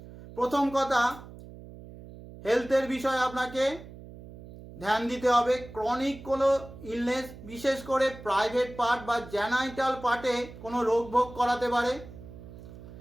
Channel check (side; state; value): right; noise; hum, 16 dB below the sound